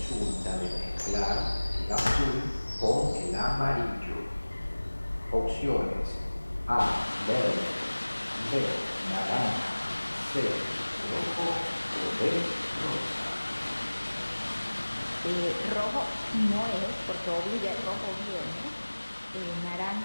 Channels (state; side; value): inverted; both; correlation -1.00